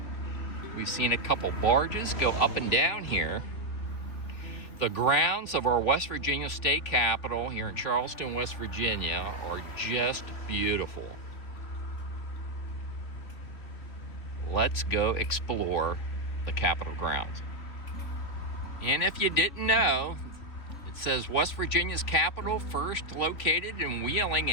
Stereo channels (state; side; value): late; right; 3.2 ms